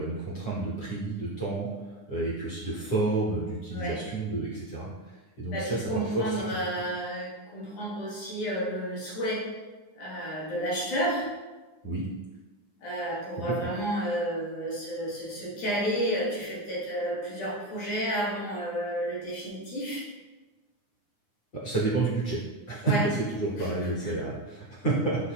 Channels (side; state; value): right; late; 9.8 ms